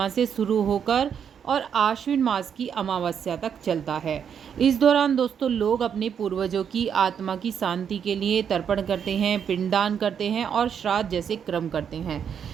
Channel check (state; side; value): quieter; left; 7.8 dB